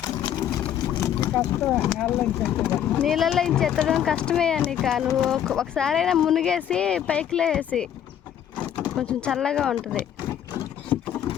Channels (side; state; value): right; quieter; 9.9 dB